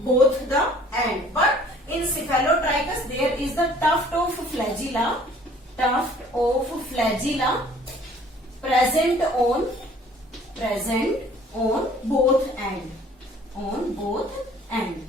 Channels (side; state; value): both; normal; correlation 0.54